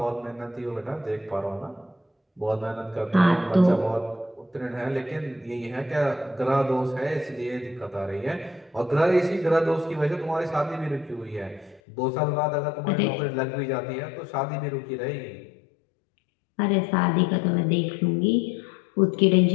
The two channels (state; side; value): drops out; right; at 11.8 s